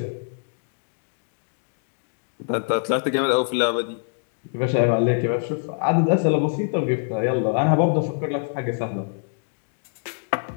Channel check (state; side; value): silent; right; digital silence